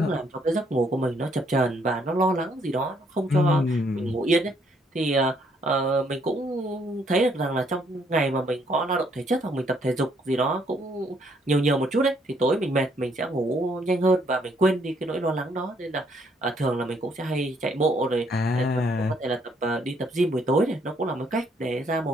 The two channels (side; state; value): both; normal; correlation 0.69